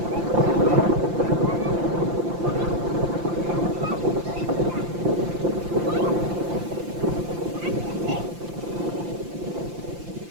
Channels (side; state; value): left; late; 5.8 ms